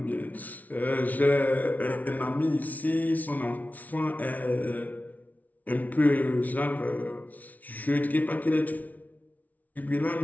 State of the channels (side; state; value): right; late; 0.075 ms